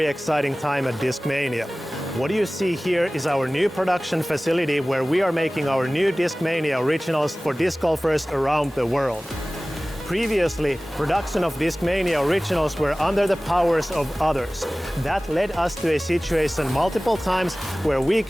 exciting time at Discmania. What you see here is our new production facility where we are making our new Discmania originals for disc golfers around the world. Previously, production of Discmania originals were under the powers of others. That led us to a situation multiple times where we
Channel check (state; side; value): normal; both; correlation 0.98